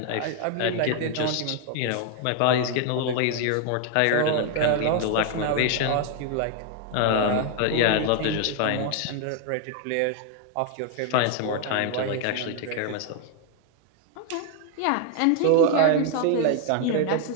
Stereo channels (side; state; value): both; different; correlation 0.00